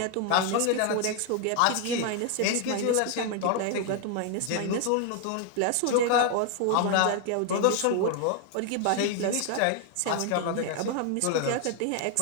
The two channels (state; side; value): different; both; correlation 0.00